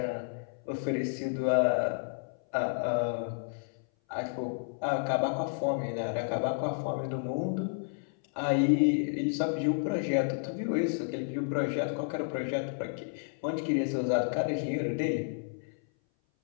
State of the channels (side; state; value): right; silent; 57 dB below the other